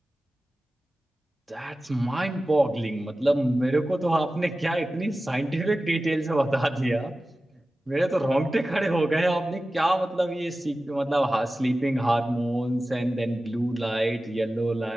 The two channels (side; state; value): both; normal; correlation 0.95